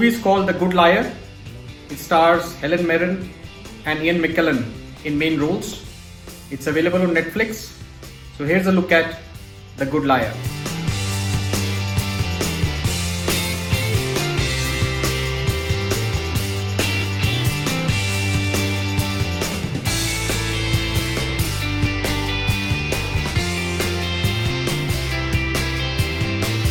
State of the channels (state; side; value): identical; both; correlation 1.00